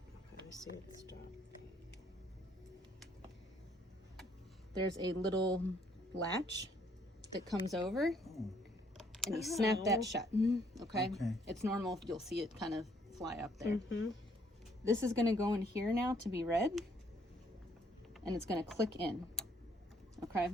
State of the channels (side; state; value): both; normal; correlation 0.66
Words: I see it stop. There's a little latch that comes over, and you snap that shut. Okay? Okay. It's normal. You'll see it kind of fly up there. Mm-hmm. This is going to go in here now to be read, and it's going to click in. Okay?